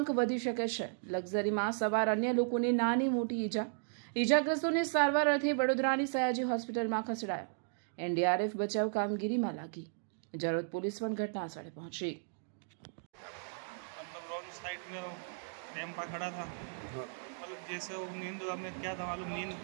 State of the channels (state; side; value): silent; left; digital silence